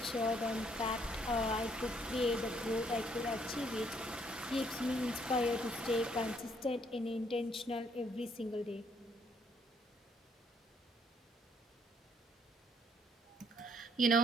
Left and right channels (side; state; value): both; normal; correlation 0.68